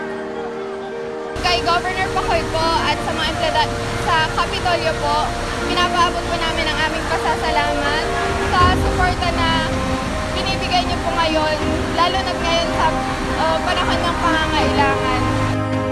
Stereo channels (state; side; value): identical; both; correlation 1.00